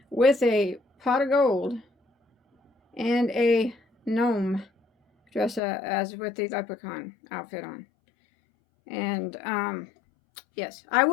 with a pot of gold and a gnome dressed as with the leprechaun outfit on. And yes, I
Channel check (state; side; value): drops out; right; at 5.6 s